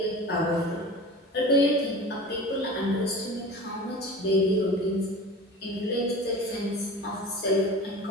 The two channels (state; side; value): normal; both; correlation 0.36